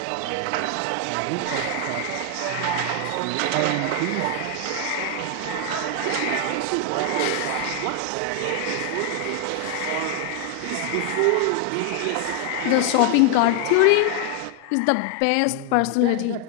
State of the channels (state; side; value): different; both; correlation 0.00